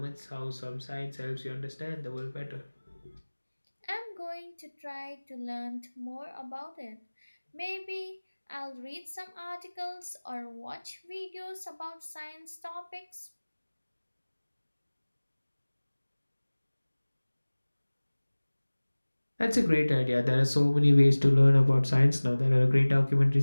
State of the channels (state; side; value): inverted; both; correlation -1.00